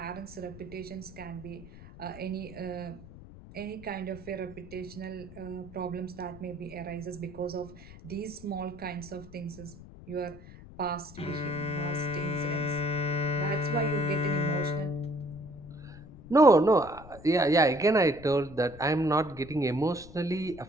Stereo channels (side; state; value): left; noise; rumble, 17 dB below the sound